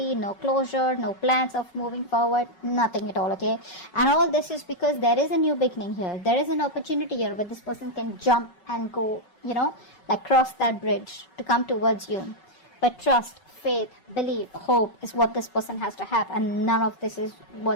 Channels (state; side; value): late; right; 5.3 ms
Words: no closure, no plans of moving forward, nothing at all, okay? And all this is because there is a new beginning here. There is an opportunity here where this person can jump and go, you know, like cross that bridge to come towards you. But trust, faith, belief, hope is what this person has to have, and none of this is